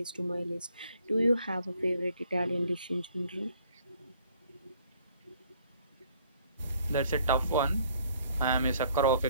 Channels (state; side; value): inverted; both; correlation -0.62